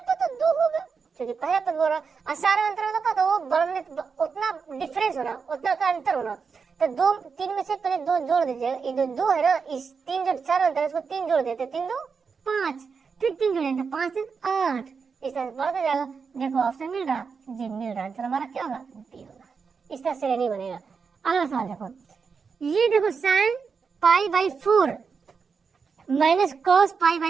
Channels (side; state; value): left; quieter; 5.5 dB